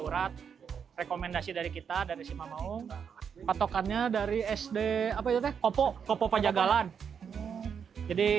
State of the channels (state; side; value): quieter; left; 7.1 dB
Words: urat. Rekomendasi dari kita dari si Mamaung. Patokannya dari SD apa itu teh? Kopo Pajagalan.